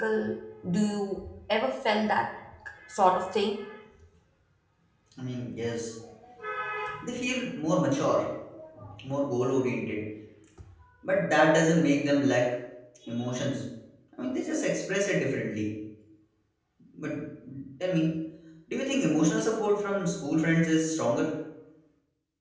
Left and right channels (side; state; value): both; identical; correlation 1.00